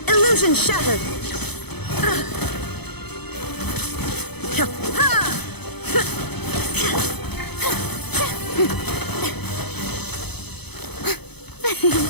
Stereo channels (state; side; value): late; right; 0.98 ms